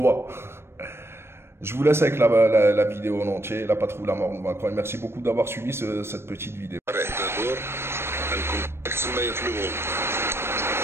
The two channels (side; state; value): left; late; 0.12 ms